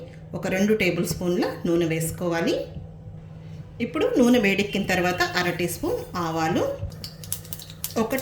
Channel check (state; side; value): identical; both; correlation 1.00